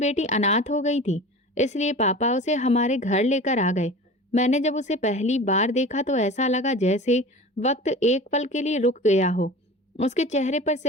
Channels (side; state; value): both; normal; correlation 0.37